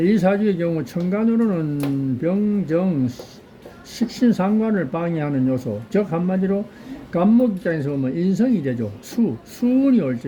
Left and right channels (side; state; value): both; identical; correlation 1.00